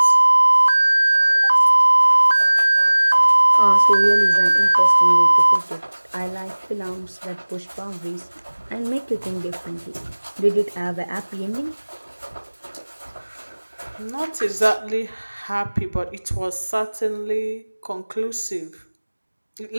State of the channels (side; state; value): both; inverted; correlation -1.00